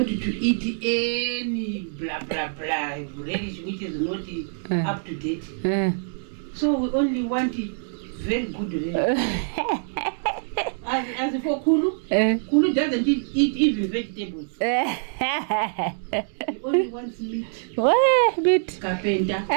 to eat any blah blah blah relish which is not up to date. So we only want very good relish. As for Kulu, Kulu doesn't eat even vegetables. He only wants meat. What? Meat? Carpenter.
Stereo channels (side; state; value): left; silent; digital silence